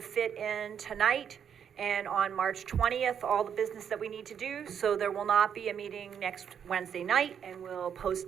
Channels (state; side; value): quieter; left; 8.1 dB